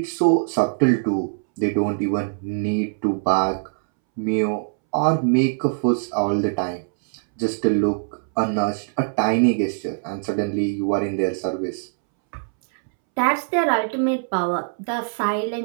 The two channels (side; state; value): left; silent; 64 dB below the other